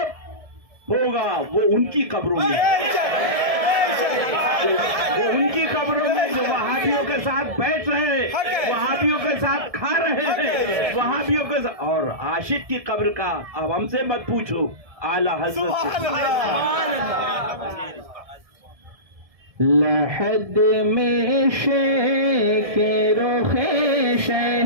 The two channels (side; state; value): left; late; 1.7 ms